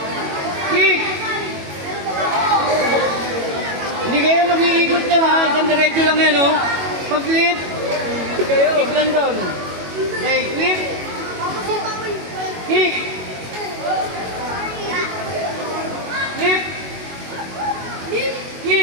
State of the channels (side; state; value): left; late; 21 ms